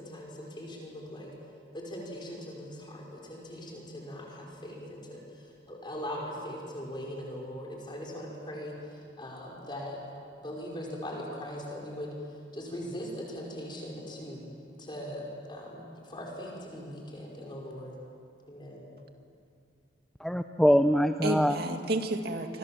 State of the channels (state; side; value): normal; both; correlation 0.80